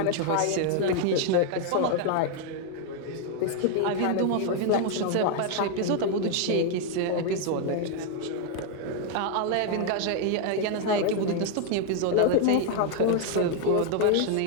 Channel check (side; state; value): both; different; correlation 0.00